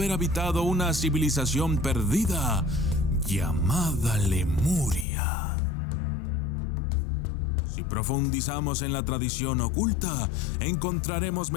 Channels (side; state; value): right; drops out; at 5.1 s